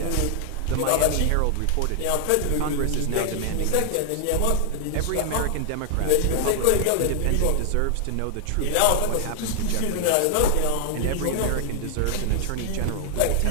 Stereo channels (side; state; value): both; different; correlation 0.00